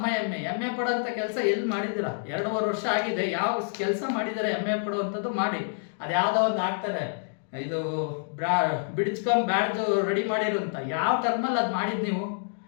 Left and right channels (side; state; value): right; silent; digital silence